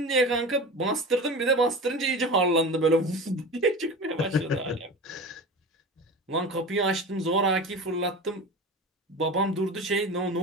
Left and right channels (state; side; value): normal; both; correlation 0.31